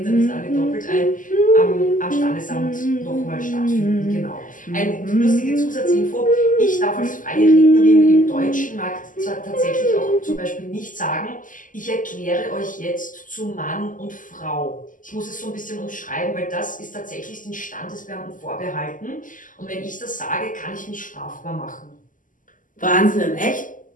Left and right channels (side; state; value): right; late; 0.38 ms